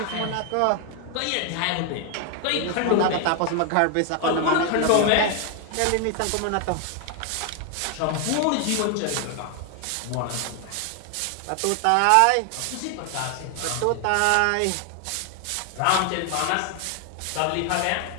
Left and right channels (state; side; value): different; both; correlation 0.00